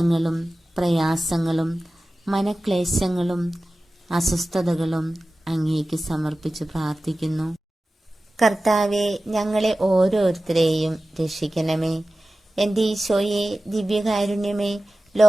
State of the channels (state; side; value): normal; both; correlation 0.96